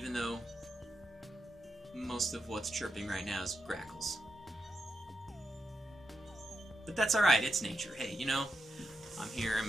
though most of what's chirping right now is grackles. But that's alright, it's nature. Hey, you know, I'm here, I'm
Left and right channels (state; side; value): normal; both; correlation 0.86